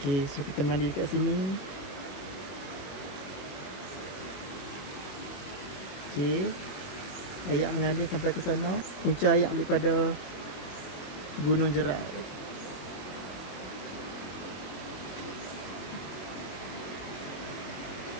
so kita mandi dekat sini. Okey. Ayak mengalir sampai ke sana. Punca ayak daripada Gunung Jerai.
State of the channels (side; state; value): right; late; 22 ms